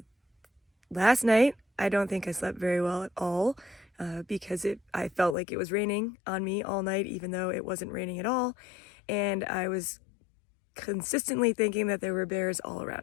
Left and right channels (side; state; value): right; drops out; at 5.4 s